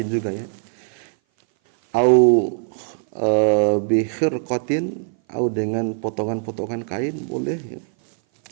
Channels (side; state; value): left; silent; 58 dB below the other